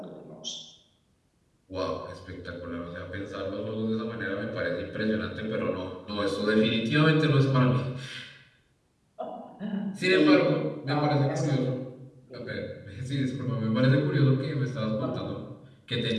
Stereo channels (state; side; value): identical; both; correlation 1.00